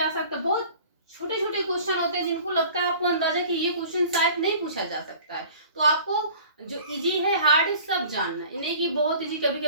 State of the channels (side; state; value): both; inverted; correlation -0.46